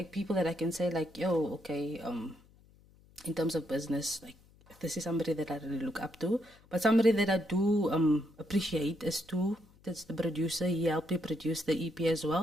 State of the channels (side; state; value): left; noise; hum, 28 dB below the sound